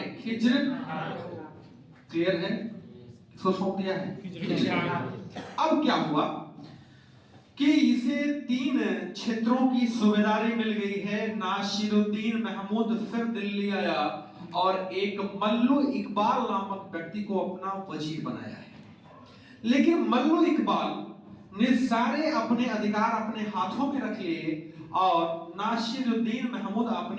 खिज्र। क्लियर है, किसको सौंप दिया है, खिज्र। अब क्या हुआ कि इसे 3 क्षेत्रों की सूबेदारी मिल गई है। नासिरुद्दीन महमूद फिर दिल्ली आया और एक मल्लू इकबाल नामक व्यक्ति को अपना वजीर बनाया है। लेकिन मल्लू इकबाल ने सारे अपने अधिकार अपने हाथों में रख लिए और नासिरुद्दीन महमूद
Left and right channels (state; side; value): identical; both; correlation 1.00